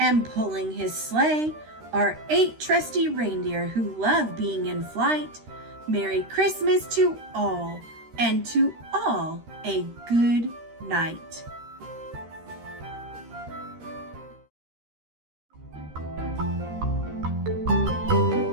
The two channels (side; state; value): left; late; 13 ms